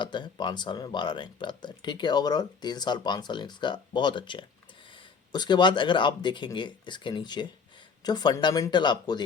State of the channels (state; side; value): quieter; right; 5.6 dB